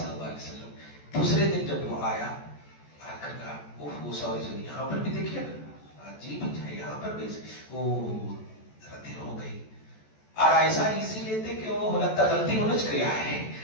اللہ علیہ وسلم دوسرے دن جب وہ آیا آ کر کہا وہ سوری یہاں پر بھی دیکھیے نا عجیب ہے، یہاں پر بھی وہ ذرا دیر ہو گئی. اور ایسا ایزی لیتے کہ وہ لگتا غلطی انہوں نے کیا ہے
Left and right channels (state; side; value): late; right; 14 ms